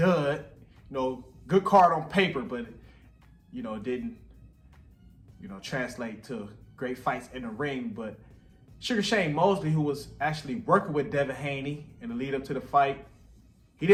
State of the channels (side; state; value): both; identical; correlation 1.00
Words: Good card on paper, but it didn't, translate to great fights in the ring. But Sugar Shane Mosley, who was actually working with Devin Haney in the lead up to the fight, he